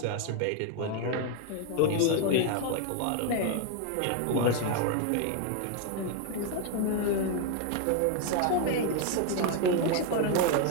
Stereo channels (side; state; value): both; different; correlation 0.01